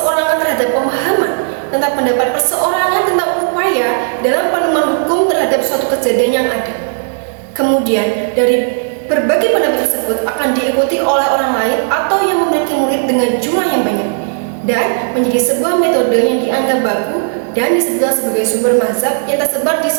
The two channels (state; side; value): silent; left; digital silence